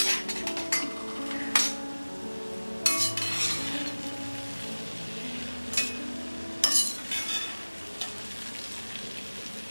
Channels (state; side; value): inverted; both; correlation -1.00